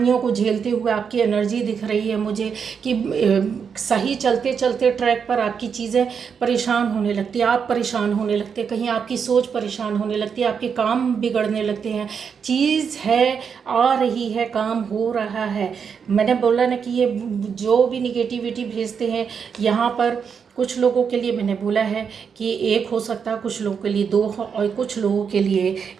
को झेलते हुए आपकी एनर्जी दिख रही है मुझे कि सही चलते चलते ट्रैक पर आपकी चीज़ें परेशान होने लगती है, आप परेशान होने लगते हैं, कहीं आपकी सोच परेशान होने लगती है, आपके काम बिगड़ने लगते हैं। चीज़ है, आ रही है, काम हो रहा है। मैंने बोला ना कि ये जो भी निगेटिविटी भेजते हैं यहाँ पर, कुछ लोगों के लिए मैंने बोला है कि एक हो सकता है, कुछ लोगों के लिए दो और कुछ लोगों के लिए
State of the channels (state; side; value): quieter; left; 6.6 dB